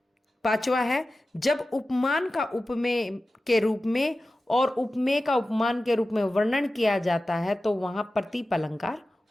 पांचवा है जब उपमान का उपमेय के रूप में और उपमेय का उपमान के रूप में वर्णन किया जाता है तो वहां प्रतीप अलंकार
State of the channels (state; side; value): normal; both; correlation 0.95